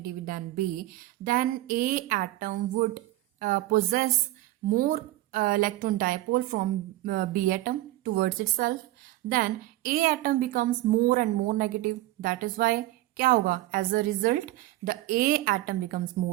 than B, then A atom would possess more electron dipole from B atom towards itself, then A atom becomes more and more negative. That is why क्या होगा? As a result, the A atom becomes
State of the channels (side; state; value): left; quieter; 16.7 dB